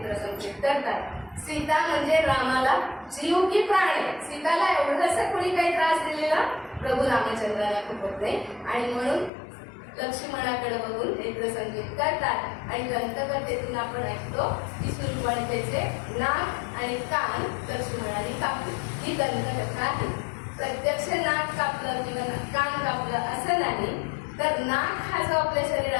करतात. सीता म्हणजे रामाला जीव की प्राण आहे. सीताला एवढंसं कोणी काही त्रास दिलेला प्रभू रामचंद्राला खूपच नाही. आणि म्हणून लक्ष्मणाकडे बघून नेत्रसंकेत करतात. आणि दंतकथेतून आपण ऐकतो की शूर्पणखेचे नाक आणि कान लक्ष्मणाने कापले. ही दंतकथा आहे. प्रत्यक्ष नाक कापलं किंवा कान कापलं असं नाही, तर नाक हा जो आपल्या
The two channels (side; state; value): right; drops out; at 9.3 s